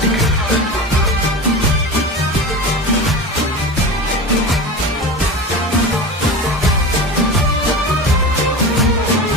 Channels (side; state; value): both; normal; correlation 0.28